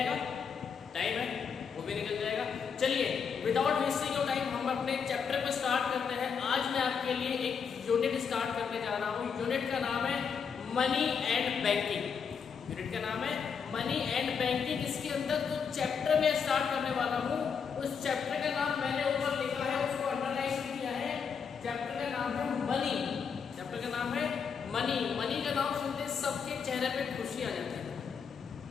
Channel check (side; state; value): right; quieter; 6.4 dB